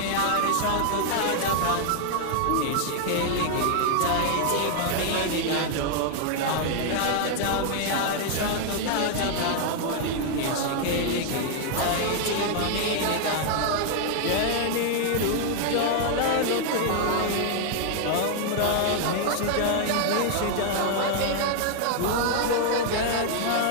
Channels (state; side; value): different; both; correlation 0.00